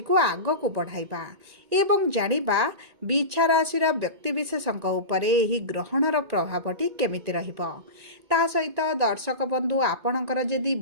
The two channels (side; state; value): left; late; 1.9 ms